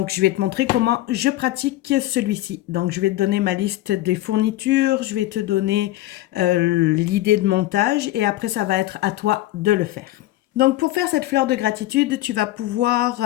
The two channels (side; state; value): right; quieter; 16.1 dB